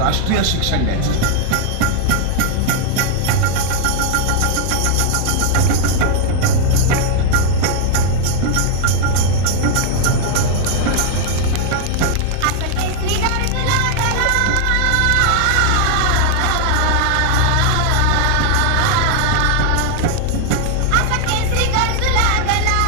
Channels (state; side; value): different; both; correlation 0.00